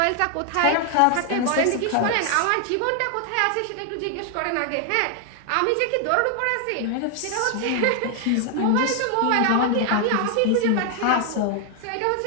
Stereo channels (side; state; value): both; different; correlation 0.00